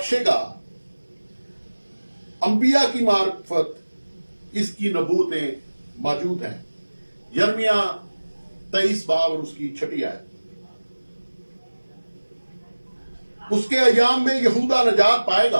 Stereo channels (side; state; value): both; inverted; correlation -1.00